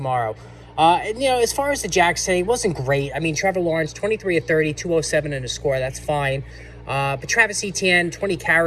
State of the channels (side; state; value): both; identical; correlation 1.00